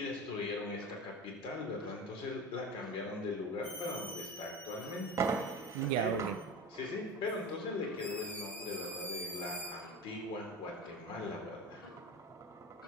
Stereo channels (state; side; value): normal; both; correlation 0.29